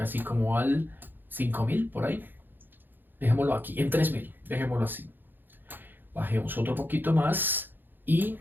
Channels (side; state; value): left; late; 0.093 ms